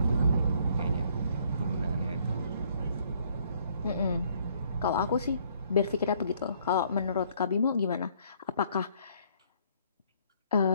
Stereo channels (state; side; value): inverted; both; correlation -0.64